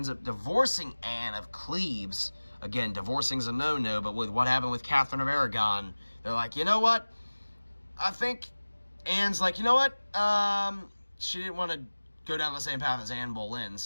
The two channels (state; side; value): inverted; both; correlation -1.00